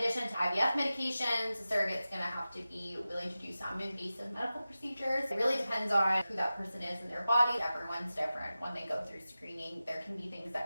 to IVF medications, a surrogate's gonna have to be willing to do some invasive medical procedures. It really depends on who that person is in their body. Everyone's different. When they go through screening, there can be things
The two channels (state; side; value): inverted; both; correlation -0.95